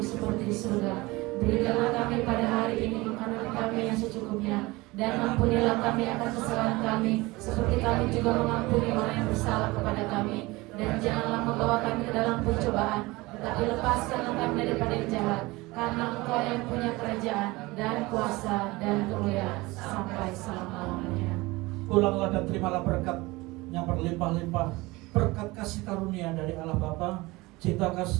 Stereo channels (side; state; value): left; quieter; 21.8 dB